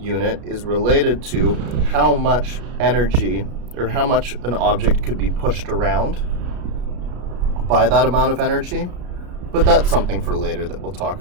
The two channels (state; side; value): late; left; 33 ms